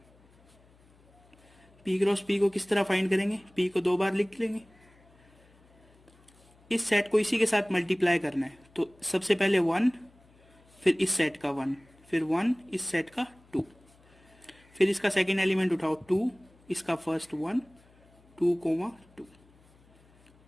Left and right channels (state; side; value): noise; left; hum, 29 dB below the sound